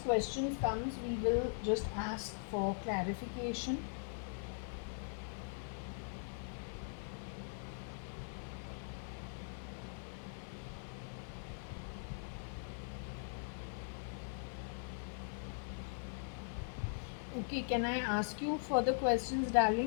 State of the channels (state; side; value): silent; right; digital silence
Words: questions comes, we will just ask for clarification. Okay, can I ask you further questions,